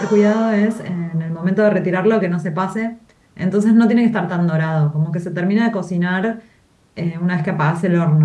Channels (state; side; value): identical; both; correlation 1.00